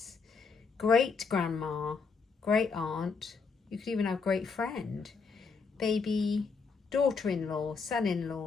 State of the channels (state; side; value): quieter; right; 5.0 dB